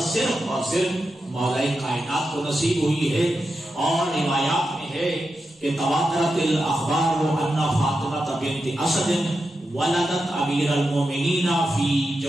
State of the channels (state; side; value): normal; both; correlation 0.89